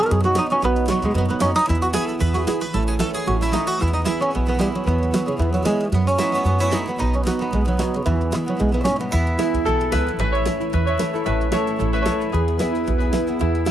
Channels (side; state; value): both; normal; correlation 0.86